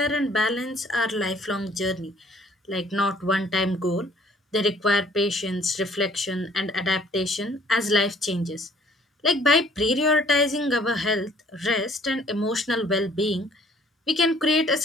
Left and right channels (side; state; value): both; normal; correlation 0.58